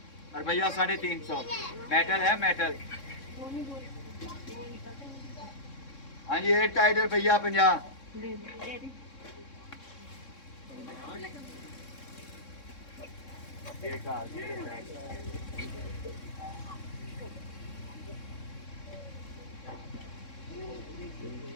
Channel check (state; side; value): late; right; 3.6 ms